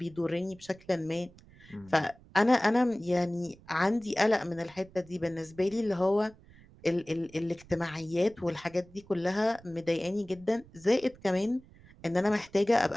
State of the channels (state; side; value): noise; right; rumble, 24 dB below the sound